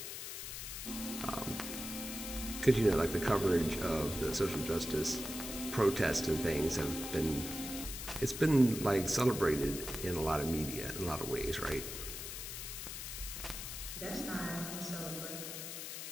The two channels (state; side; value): noise; left; hiss, 7 dB below the sound